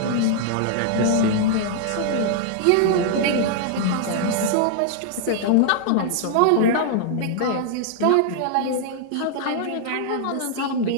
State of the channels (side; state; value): both; different; correlation -0.01